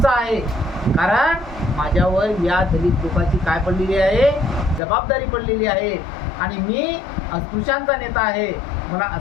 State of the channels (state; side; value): drops out; right; at 4.8 s